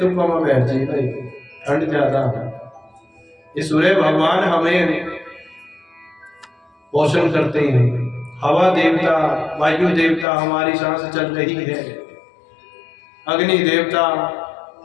पामा बैठ जी भाई ठंड ज्यादा है। ये सूर्य भगवान हमें पोषण करते हैं, हवा देवता, वायु देवता हमारी सांस चल रही है, अग्नि देवता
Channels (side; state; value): right; drops out; at 10.2 s